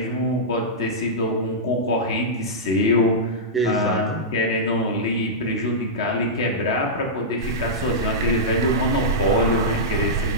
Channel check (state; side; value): normal; both; correlation -0.13